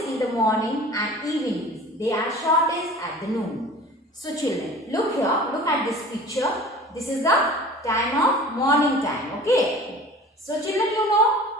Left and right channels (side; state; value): both; normal; correlation 0.42